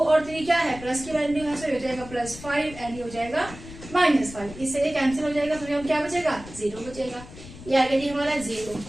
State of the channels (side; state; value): left; noise; rumble, 15 dB below the sound